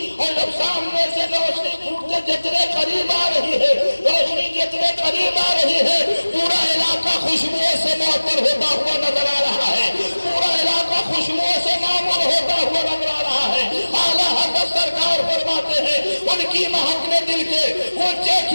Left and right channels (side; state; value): both; inverted; correlation -1.00